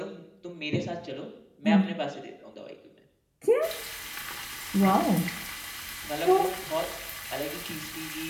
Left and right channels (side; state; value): both; identical; correlation 1.00